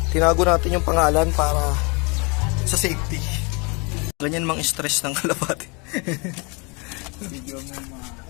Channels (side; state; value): right; quieter; 30.6 dB